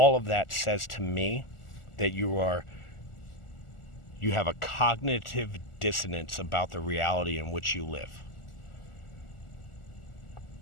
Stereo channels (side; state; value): right; late; 1.4 ms